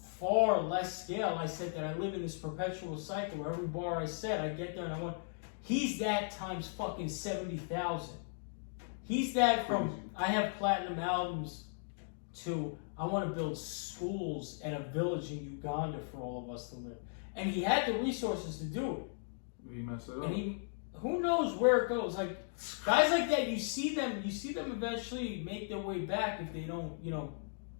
far less scale I said that I live in this perpetual cycle where every bar I set, I get there and I want. He's that times fucking 70,000. He's that from I have platinum albums to I want to build schools and a village in Uganda for all of us to live. And he had the resources to do it. He messed it up. And who knows where it goes? Like guys like that, you see them eventually make their way back if they don't,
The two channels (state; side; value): silent; right; digital silence